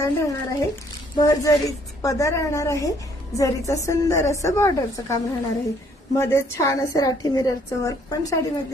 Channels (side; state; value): both; normal; correlation 0.64